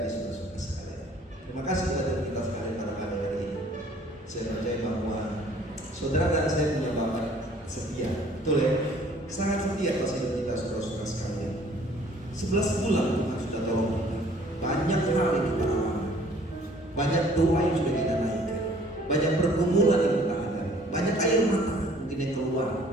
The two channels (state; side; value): normal; both; correlation 0.56